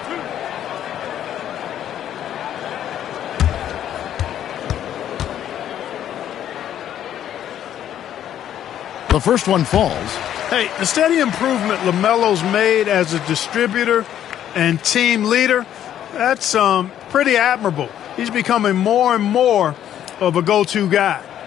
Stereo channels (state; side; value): quieter; right; 10.8 dB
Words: The first one falls. Hey, the steady improvement LaMelo's made as a distributor and team leader, that's pretty admirable. He's becoming more and more of a go-to guy.